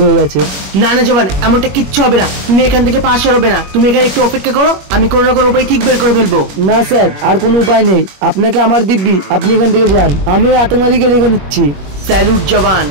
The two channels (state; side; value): late; left; 21 ms